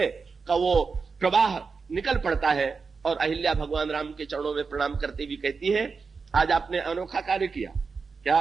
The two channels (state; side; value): quieter; left; 4.9 dB